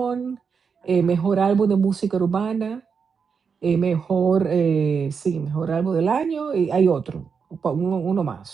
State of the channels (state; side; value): quieter; left; 5.9 dB